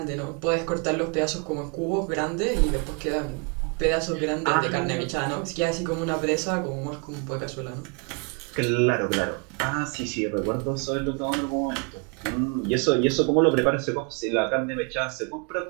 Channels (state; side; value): quieter; left; 35.3 dB